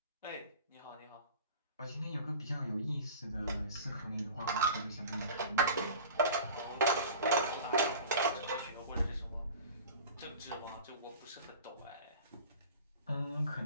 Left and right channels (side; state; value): both; inverted; correlation -0.39